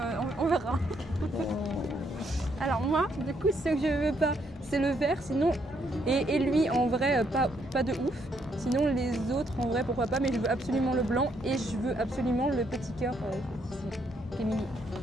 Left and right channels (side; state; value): both; normal; correlation 0.73